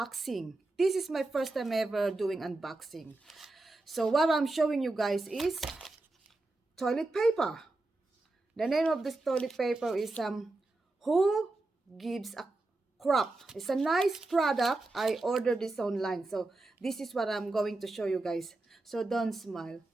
This is my first time ever doing unboxing. So what I'm showing you guys is toilet paper. The name of this toilet paper is Who Gives a Crap. It's a nice product. I ordered this online. So this is what I'm going to show you guys. So don't smile.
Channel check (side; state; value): left; quieter; 3.0 dB